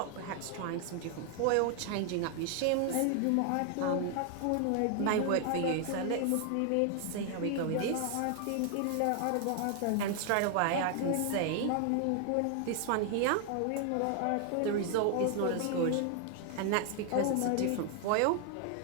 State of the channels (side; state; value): both; different; correlation 0.00